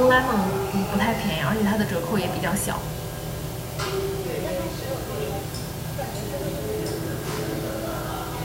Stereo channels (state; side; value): identical; both; correlation 1.00